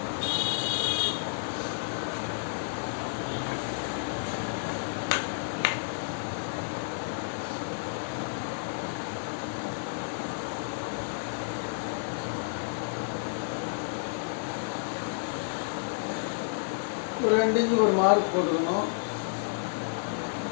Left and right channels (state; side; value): silent; right; 57 dB below the other